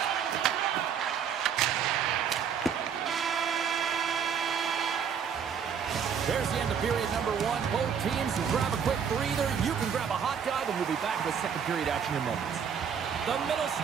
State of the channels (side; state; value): left; quieter; 7.4 dB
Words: There's the end of period number one. Both teams can grab a quick breather. You can grab a hot dog, and we'll be back with second period action in moments. The middle